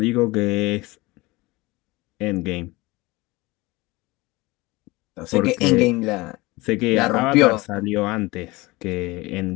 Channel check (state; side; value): quieter; right; 21.9 dB